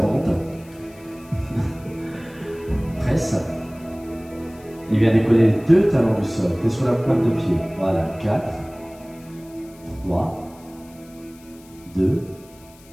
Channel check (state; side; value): noise; left; hiss, 25 dB below the sound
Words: Presse. Il vient décoller les deux talons du sol. Tu es sur la pointe de pied. Voilà, 4, 3, 2.